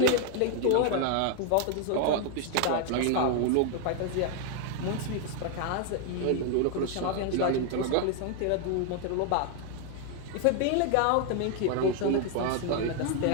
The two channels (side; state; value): both; different; correlation 0.00